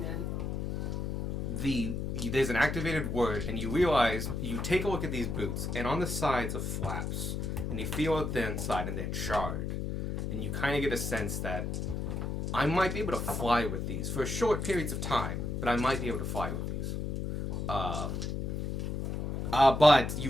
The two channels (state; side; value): noise; left; hum, 2 dB below the sound